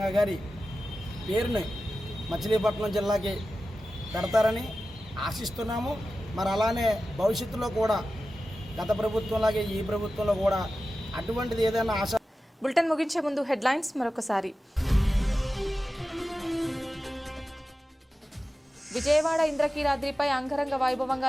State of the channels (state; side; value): normal; both; correlation 0.94